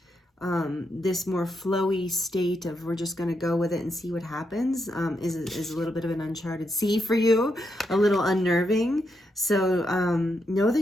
this more flowy state of we're just going to go with it and see what happens is a little bit of an uncharted sea for you, a little unnerving. So know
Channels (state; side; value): normal; both; correlation 0.82